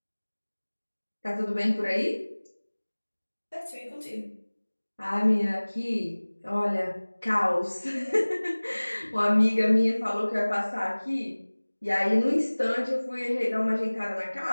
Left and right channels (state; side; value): inverted; both; correlation -1.00